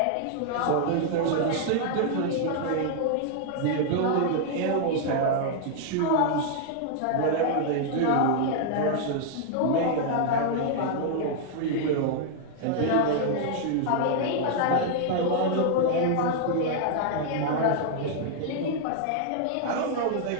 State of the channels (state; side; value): different; both; correlation -0.01